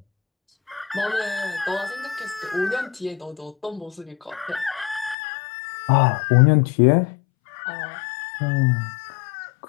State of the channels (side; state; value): right; drops out; at 5.2 s